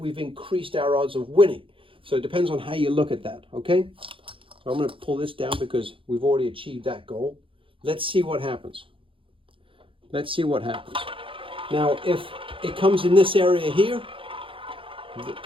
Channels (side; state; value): left; late; 0.25 ms